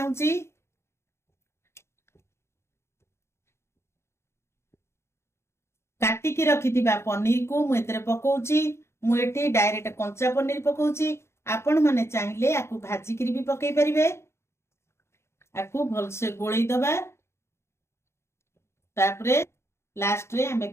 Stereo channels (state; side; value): late; right; 0.13 ms